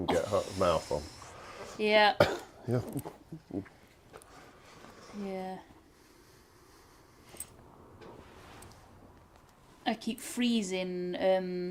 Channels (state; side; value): identical; both; correlation 1.00